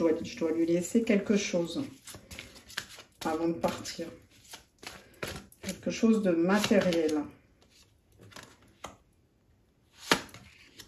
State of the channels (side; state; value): both; identical; correlation 1.00